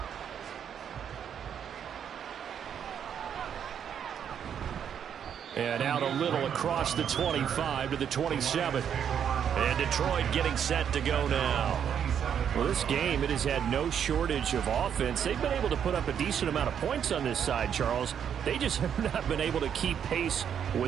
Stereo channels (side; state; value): left; quieter; 8.4 dB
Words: And out a little across the 25 to the 27. And Detroit getting set to go now. Well, this game, it has had no shortage of offense. They've been able to put up a decent amount of points on this side, Charles. They just have not been able to keep pace